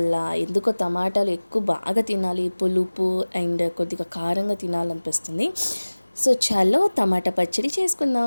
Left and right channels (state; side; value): inverted; both; correlation -1.00